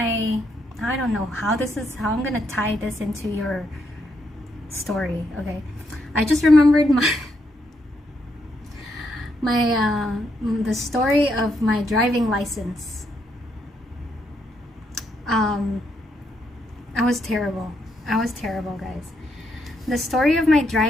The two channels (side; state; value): both; normal; correlation 0.77